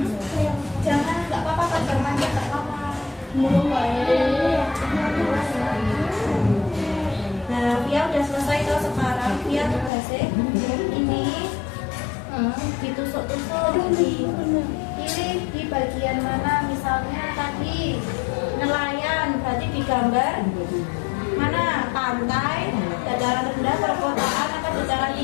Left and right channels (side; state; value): right; drops out; at 9.9 s